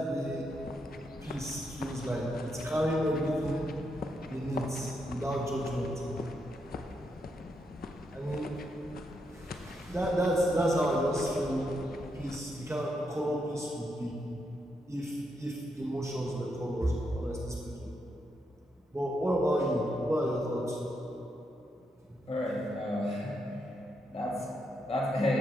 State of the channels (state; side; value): normal; both; correlation 0.81